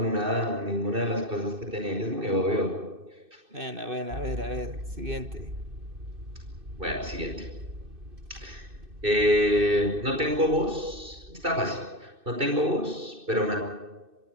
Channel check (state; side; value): late; left; 2.6 ms